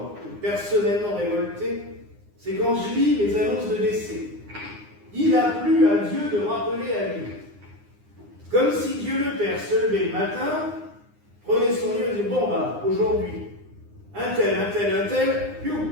personnellement révolté, c'est quand je lis les annonces de décès. Il a plu à Dieu de rappeler à lui. Comme si Dieu le Père se levait le matin, prenait son livre et disait, bon bah, aujourd'hui, un tel,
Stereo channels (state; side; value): late; left; 9.7 ms